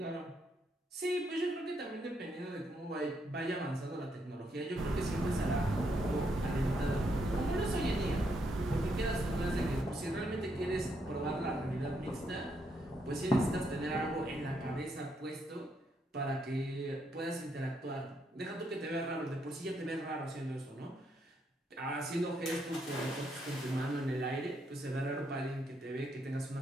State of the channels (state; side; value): normal; both; correlation 0.77